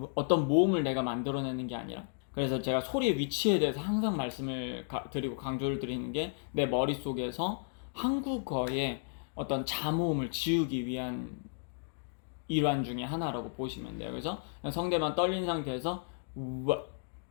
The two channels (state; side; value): silent; right; digital silence